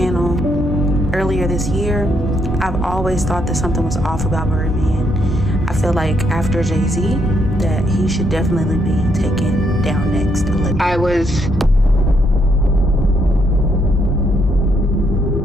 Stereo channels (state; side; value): normal; both; correlation 0.74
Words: earlier this year. I've always thought that something was off about Birdman. I feel like after Jay-Z, that he should definitely be taken down next. I was